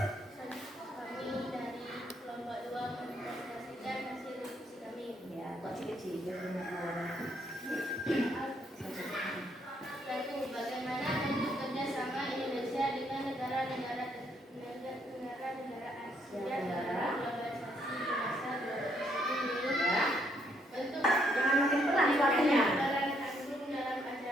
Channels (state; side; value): normal; both; correlation 0.72